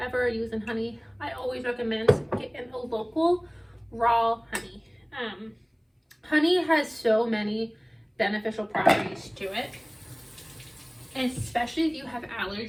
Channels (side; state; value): both; identical; correlation 1.00